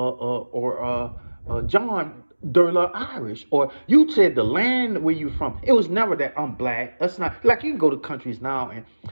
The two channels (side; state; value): both; inverted; correlation -1.00